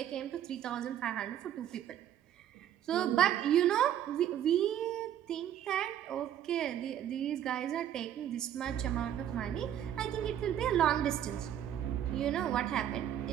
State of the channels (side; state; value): left; quieter; 10.6 dB